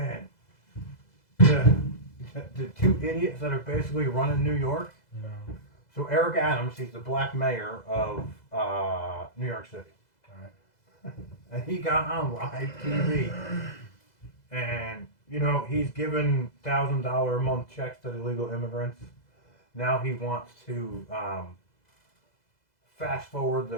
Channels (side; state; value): right; late; 2.0 ms